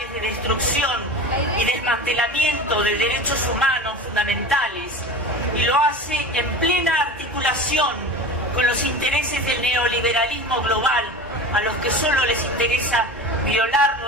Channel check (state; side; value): normal; both; correlation 0.32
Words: de destrucción y desmantelamiento de derechos humanos fundamentales y lo hace en plena articulación con los intereses del neoliberalismo global, a los que solo les interesa violar